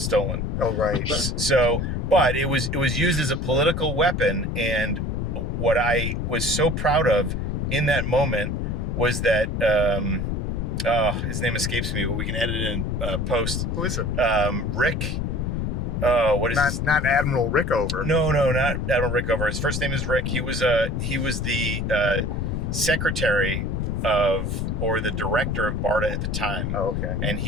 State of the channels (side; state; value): left; noise; rumble, 1 dB below the sound